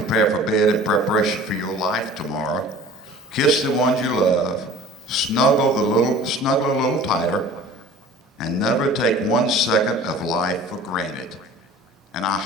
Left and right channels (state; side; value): normal; both; correlation 0.45